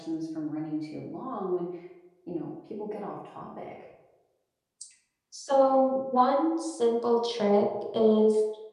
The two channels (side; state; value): both; identical; correlation 1.00